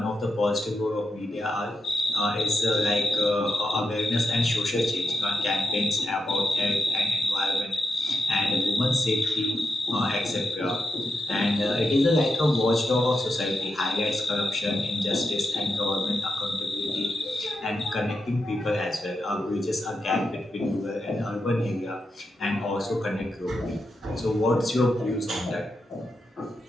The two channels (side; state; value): both; normal; correlation 0.86